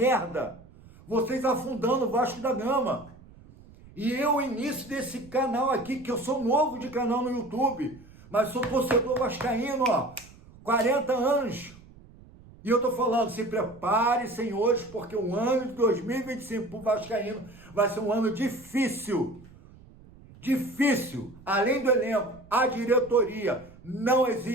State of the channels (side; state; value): right; noise; rumble, 22 dB below the sound